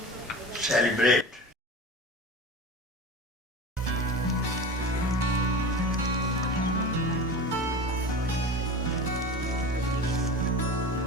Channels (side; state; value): both; normal; correlation 0.32